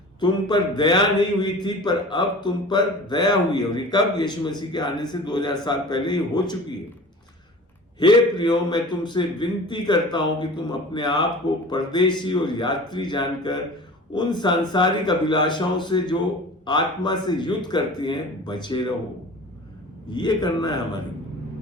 तुम पर दया नहीं हुई थी, पर अब तुम पर दया हुई है। और ये कब? यीशु मसीह के आने से 2000 साल पहले ही हो चुकी है। हे प्रियो, मैं तुमसे विनती करता हूं कि तुम अपने आप को परदेशी और यात्री जानकर उन सांसारिक अभिलाषाओं से जो आत्मा से युद्ध करती हैं बचे रहो। ये करना है हमारे,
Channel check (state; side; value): normal; both; correlation 0.40